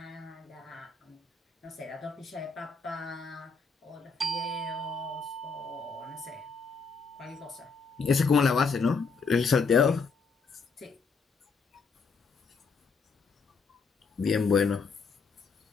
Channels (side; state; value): right; quieter; 4.7 dB